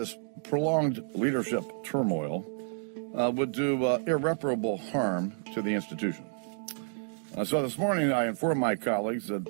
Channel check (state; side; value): silent; left; digital silence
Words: prolonged leadership turmoil would do irreparable harm to the institution. So this morning I informed my colleagues